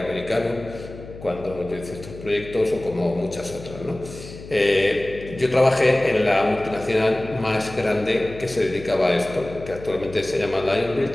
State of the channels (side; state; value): left; noise; hum, 15 dB below the sound